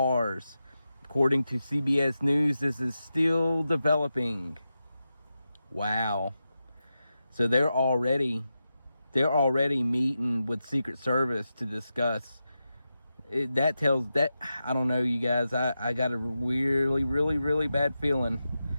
According to CBS News, this is still developing. Wow. So they're already meeting with Secret Service to discuss. That tells that, I don't know, you guys, I got a really bad feeling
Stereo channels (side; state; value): both; inverted; correlation -0.90